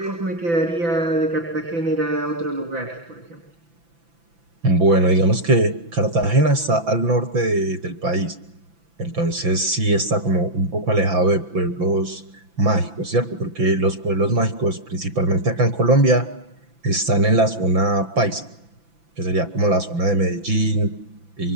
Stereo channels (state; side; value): late; left; 5.9 ms